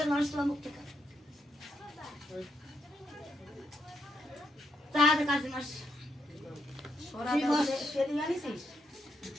নরসলা মুক্তি কর তাহলে কাজ নরস সোরা বস সেদি আনিছিস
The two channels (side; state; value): both; normal; correlation 0.78